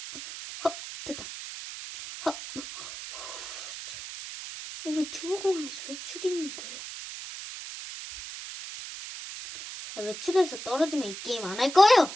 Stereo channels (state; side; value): noise; right; hiss, 10 dB below the sound